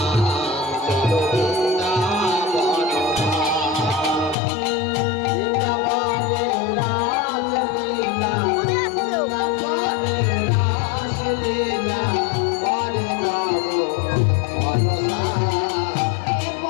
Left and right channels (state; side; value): drops out; right; at 4.4 s